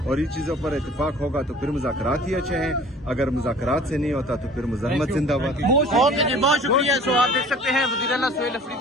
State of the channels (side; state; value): both; normal; correlation 0.47